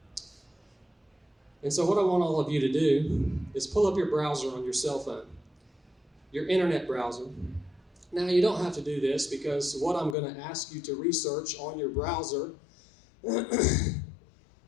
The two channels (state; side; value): drops out; right; at 10.2 s